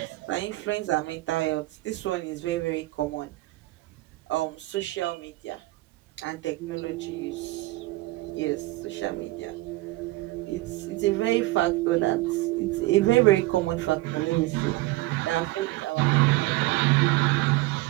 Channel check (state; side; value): quieter; left; 19.4 dB